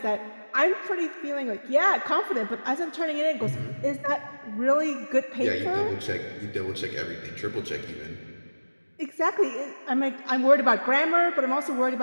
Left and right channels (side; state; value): both; inverted; correlation -1.00